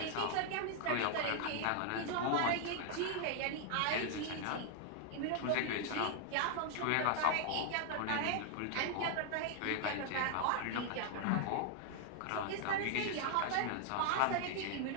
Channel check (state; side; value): different; both; correlation 0.00